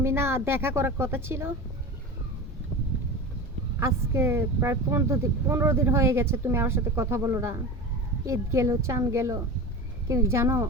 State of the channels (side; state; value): both; normal; correlation 0.29